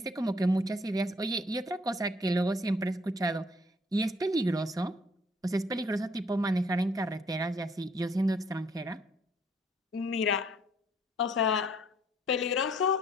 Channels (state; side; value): normal; both; correlation 0.62